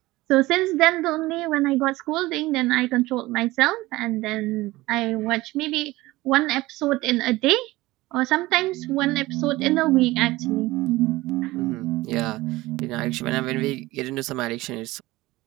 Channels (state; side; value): quieter; left; 19.1 dB